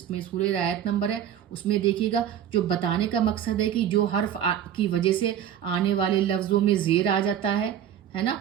सूरह आयत नंबर है उसमें देखिएगा। जो बताने का मकसद है कि जो हर्फ की वजह से आने वाले लफ्ज़ों में ज़ेर आ जाता है ना,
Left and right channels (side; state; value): left; quieter; 9.7 dB